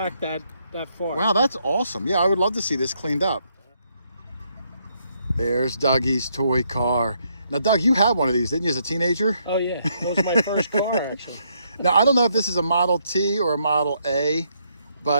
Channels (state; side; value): inverted; both; correlation -0.74